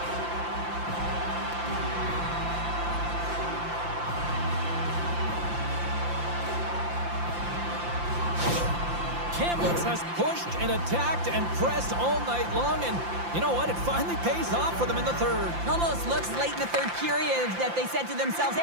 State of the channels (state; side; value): late; left; 5.8 ms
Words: Kamloops has pushed and attacked and pressed all night long, and you know what? It finally pays off for them in the third. Almost looks late in the third period that they said to themselves,